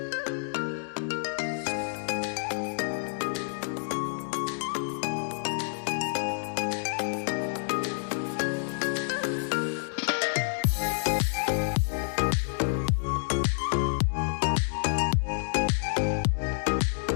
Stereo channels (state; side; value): silent; right; digital silence